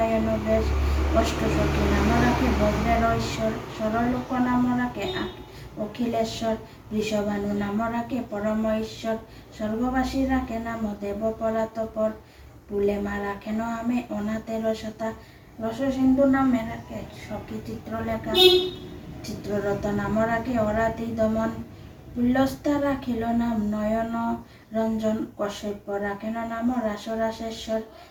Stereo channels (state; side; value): identical; both; correlation 1.00